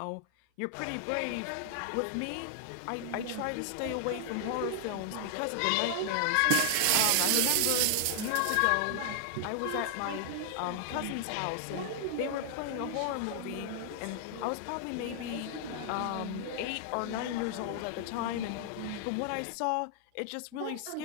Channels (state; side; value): different; both; correlation 0.00